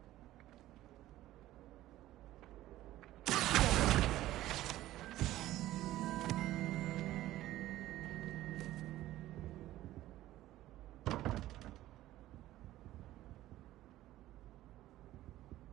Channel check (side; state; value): left; quieter; 15.0 dB